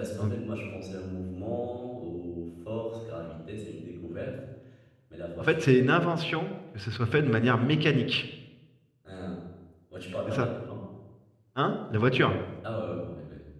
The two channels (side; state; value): both; identical; correlation 1.00